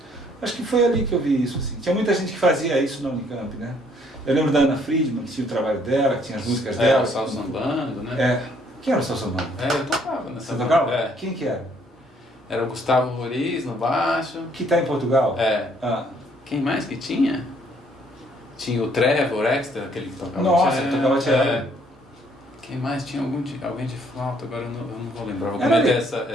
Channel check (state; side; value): normal; both; correlation 0.65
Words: Acho que foi ali que eu vi isso, assim. Tinha muita gente que fazia isso na Unicamp, né? Eu lembro da Ana Friedman, que tinha o trabalho dela, que tinha as músicas dela. O Sal Sambando, né? Quem era o Sal Sambando? Eu tocava nessa banda. Você tocava? Quem que era? Era o Gustavo Roriz no baixo. Que está em Portugal? Quem mais que tinha? Tinha o Trevor Extra, aquele que tocava Nossa, que tocava cello. Quem mais? Tinha alguém de flauta, agora eu não vou lembrar.